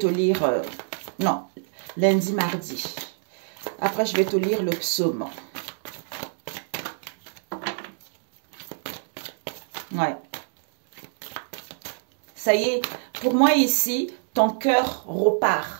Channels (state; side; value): silent; left; digital silence